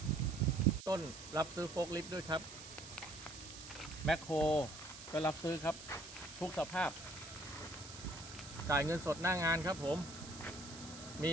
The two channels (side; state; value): right; noise; hiss, 13 dB below the sound